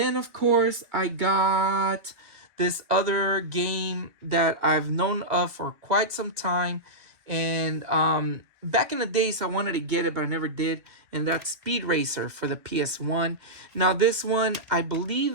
of course, I got this other game that I've known of for quite some time. And back in the days, I wanted to get it, but I never did. And that's Speed Racer for the PS1. Now, this one, I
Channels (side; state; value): left; late; 2.3 ms